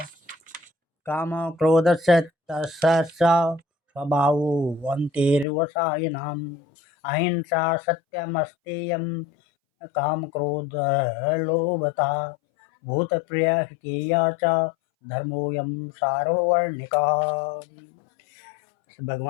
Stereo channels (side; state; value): right; drops out; at 5.5 s